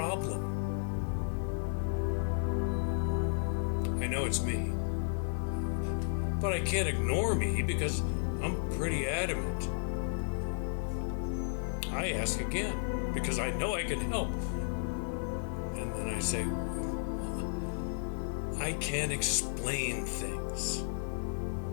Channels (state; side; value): silent; right; 55 dB below the other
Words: I know it's me, but I can't ignore me because I'm pretty adamant. I ask again because I know I can help. And then I say, "Well, I can't explain things."